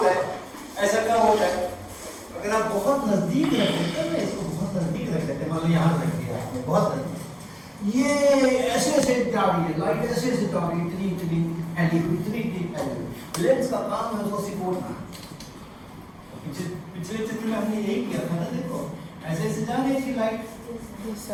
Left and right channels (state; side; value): identical; both; correlation 1.00